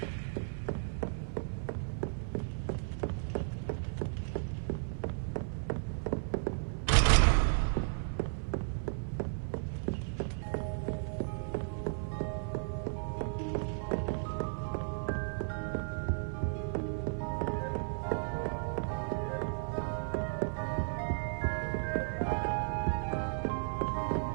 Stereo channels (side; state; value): left; silent; 55 dB below the other